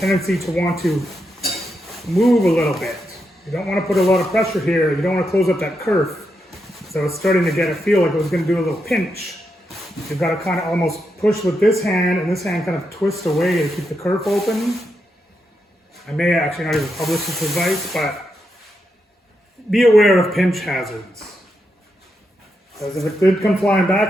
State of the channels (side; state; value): both; normal; correlation 0.84